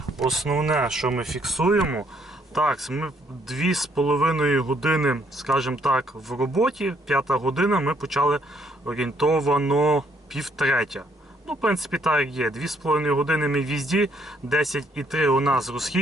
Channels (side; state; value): both; normal; correlation 0.68